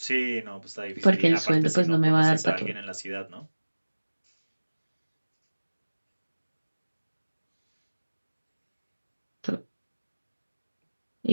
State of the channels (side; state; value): both; inverted; correlation -1.00